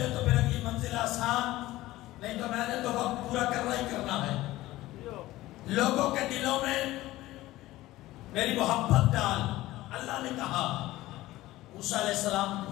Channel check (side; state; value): right; quieter; 16.9 dB